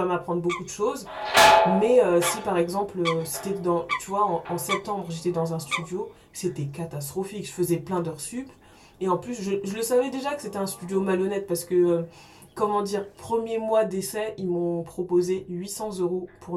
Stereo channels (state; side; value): identical; both; correlation 1.00